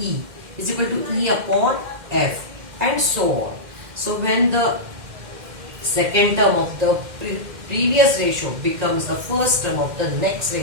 is equal to E upon F, and so on. So when the second term of the previous ratio becomes the first term of the next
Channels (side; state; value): left; late; 2.1 ms